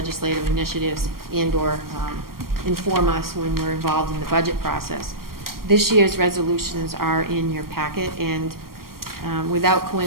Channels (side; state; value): left; late; 0.93 ms